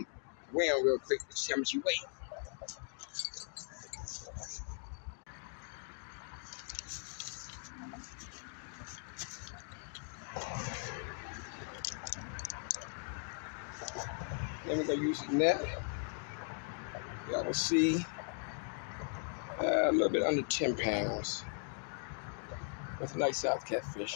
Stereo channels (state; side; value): silent; right; 52 dB below the other